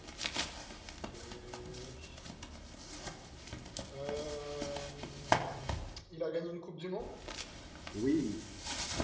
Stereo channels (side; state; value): both; identical; correlation 1.00